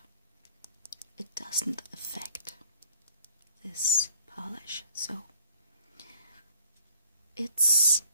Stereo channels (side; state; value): both; inverted; correlation -0.59